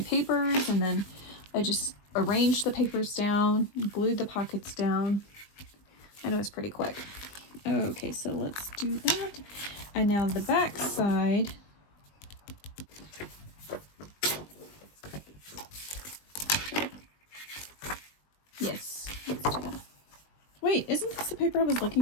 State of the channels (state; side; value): late; right; 20 ms